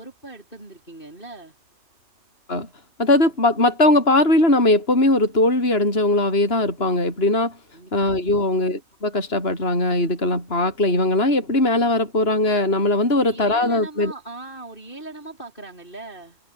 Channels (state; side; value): late; right; 2.9 ms